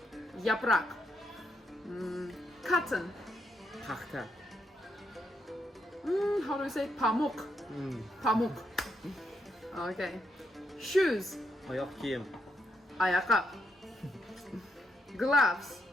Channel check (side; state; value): both; normal; correlation 0.79